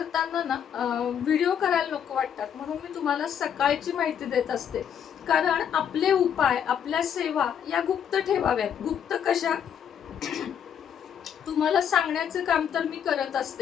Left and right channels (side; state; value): right; quieter; 8.5 dB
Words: ना व्हिडिओ करायला नको वाटतात, म्हणून मी तुम्हाला सकाळची माहिती देत असते. कारण आपले उपाय, आपल्या सेवा या गुप्त ठेवाव्यात. गुप्त कशा, तुम्हाला सांगण्याचं काम तर मी करत